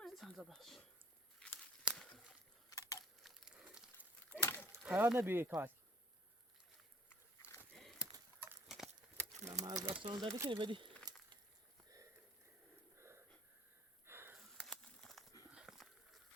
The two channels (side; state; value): both; normal; correlation 0.54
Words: من. سنزا باش خیال نبیه کار از دستان داری کنی بدی